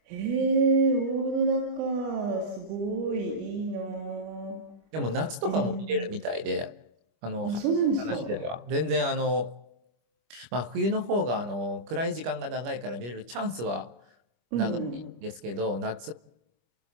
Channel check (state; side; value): late; left; 25 ms